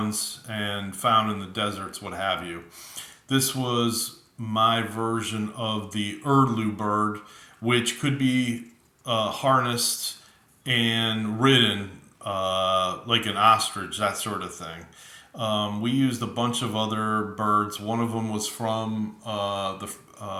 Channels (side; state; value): both; identical; correlation 1.00